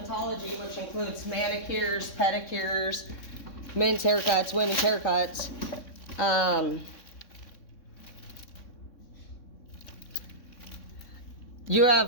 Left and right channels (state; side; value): late; right; 3.6 ms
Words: which includes manicures, pedicures, men's haircuts, women's haircuts. You